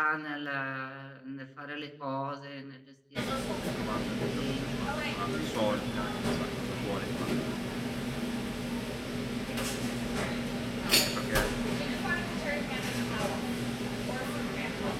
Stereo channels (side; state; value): both; identical; correlation 1.00